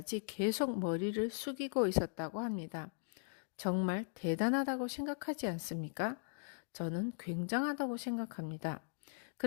계속 머리를 숙이고 있었다고 합니다. 정말 대단하다고 생각하지 않습니까? 저는 굉장하다고 생각합니다.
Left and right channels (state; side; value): silent; right; digital silence